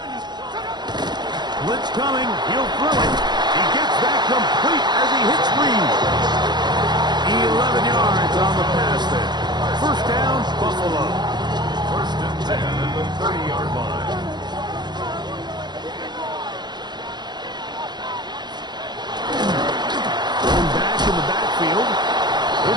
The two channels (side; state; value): left; late; 0.21 ms